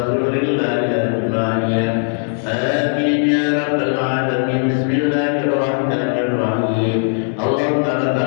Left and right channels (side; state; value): right; silent; 67 dB below the other